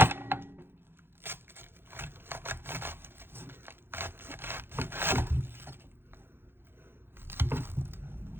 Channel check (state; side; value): late; left; 0.10 ms